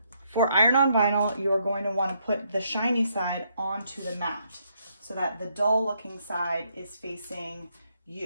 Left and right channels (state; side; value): inverted; both; correlation -0.74